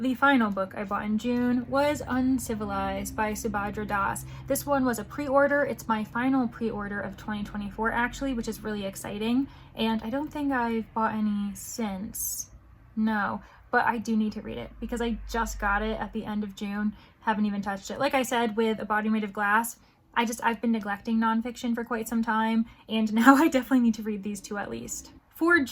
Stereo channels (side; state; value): both; identical; correlation 1.00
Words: final book I bought in June, was Uncivilized by Subhadra Das. This one was a pre-order. It's my final pre-order of 2024 actually, which is really exciting. And I don't think I've bought any since. No, but I do need to read it because I just got it at the end of June. Haven't even touched it. Like I said with A Body Made of Glass, I've been neglecting nonfiction for quite some time, and now I definitely need to read these 2 at least. For